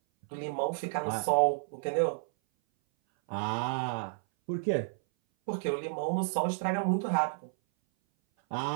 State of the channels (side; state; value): left; silent; 57 dB below the other